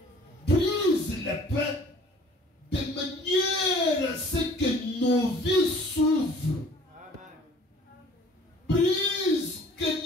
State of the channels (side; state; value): both; normal; correlation 0.52